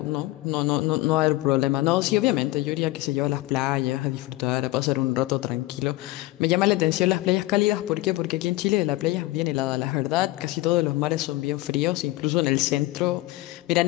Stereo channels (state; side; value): quieter; right; 18.5 dB